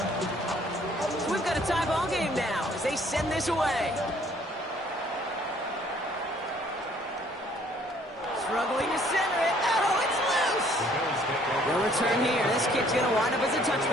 We've got a tie ball game now as they send this away. Struggling to center it. Oh, it's loose. No return here. This kick's going to wind up as a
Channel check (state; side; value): normal; both; correlation 0.60